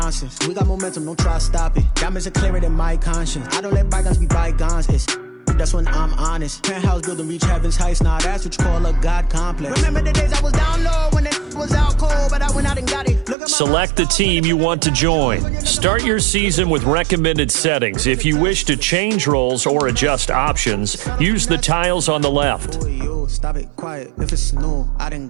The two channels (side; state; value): left; drops out; at 13.4 s